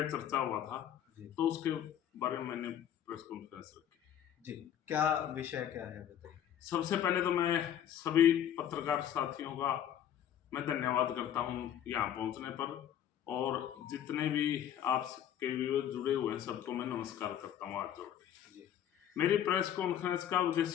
चर्चा हुआ था तो उसके बारे में मैंने प्रेस कॉन्फ्रेंस रखी जी। क्या विषय क्या है बताइए। सबसे पहले तो मैं सभी पत्रकार साथियों का मैं धन्यवाद करता हूं यहाँ पहुंचने पर, और जितने भी आपके व्यूअर्स जुड़े हुए हैं सबको मैं नमस्कार करता हूं हाथ जोड़ के। मेरी प्रेस कॉन्फ्रेंस का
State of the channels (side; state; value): right; quieter; 10.1 dB